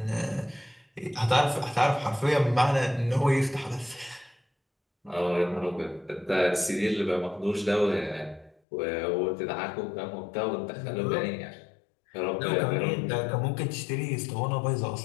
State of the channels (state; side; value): drops out; right; at 8.6 s